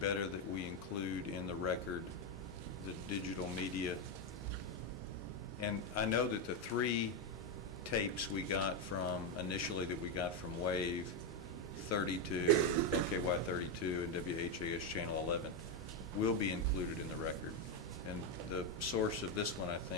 that we include in the record the digital media. And I know that the 3 tapes we got from, initially that we got from Wave 32, LKY 32, and WHAS Channel 11 will be included in the record. And the source of this one, I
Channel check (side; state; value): both; normal; correlation 0.06